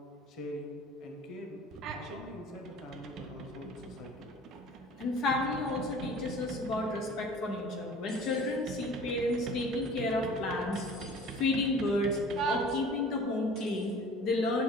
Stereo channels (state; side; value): normal; both; correlation 0.45